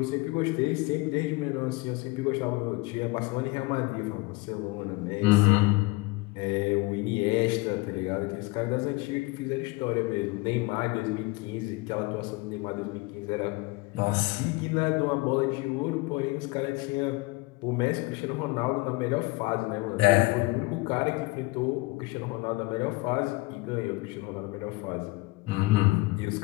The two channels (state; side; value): quieter; right; 23.0 dB